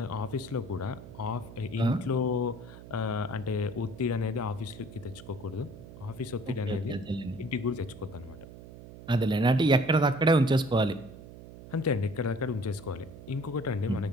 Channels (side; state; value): right; noise; hum, 16 dB below the sound